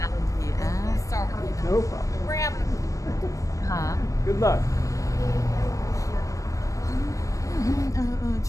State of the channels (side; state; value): right; late; 0.16 ms